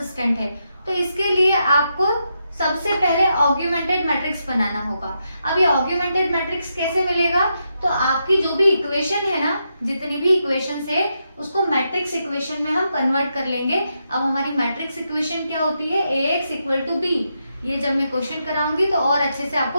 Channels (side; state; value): both; inverted; correlation -0.83